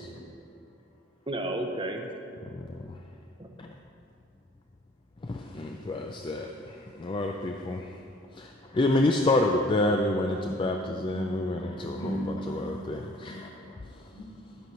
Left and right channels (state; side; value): normal; both; correlation 0.55